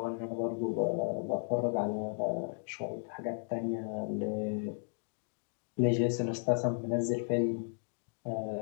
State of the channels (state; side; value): silent; right; digital silence